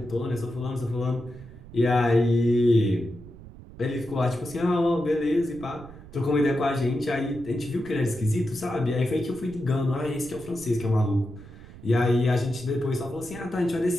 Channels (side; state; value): right; noise; rumble, 18 dB below the sound